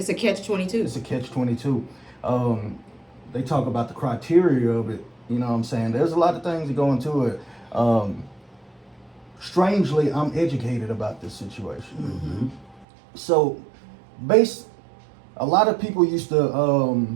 a catch-22. It's a catch-22. They talk about the criteria of it. You know what I'm saying? There's a lot of things that go into it. Strangely, I'm educated about this situation. So, a lot of people used to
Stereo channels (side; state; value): left; drops out; at 12.9 s